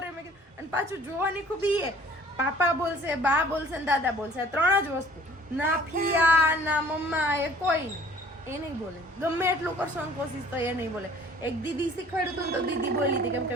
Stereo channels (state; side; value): normal; both; correlation 0.52